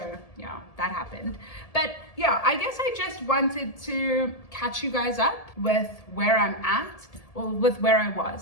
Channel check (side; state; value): right; late; 1.7 ms